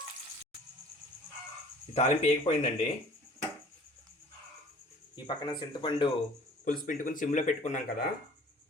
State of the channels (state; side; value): normal; both; correlation 0.50